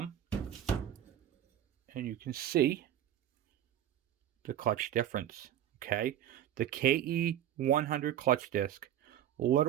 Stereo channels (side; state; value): left; quieter; 11.1 dB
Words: And you can see the clutch difference. Okay, the KE100 clutch disc